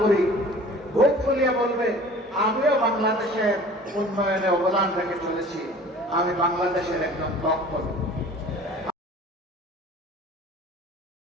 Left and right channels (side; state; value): both; normal; correlation 0.45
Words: বুক ফুলিয়ে বলবে আমিও বাংলাদেশের উন্নয়নে অবদান রেখে চলেছি, আমি বাংলাদেশের একজন দক্ষ।